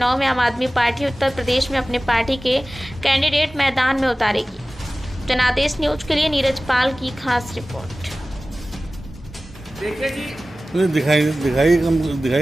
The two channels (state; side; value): normal; both; correlation 0.97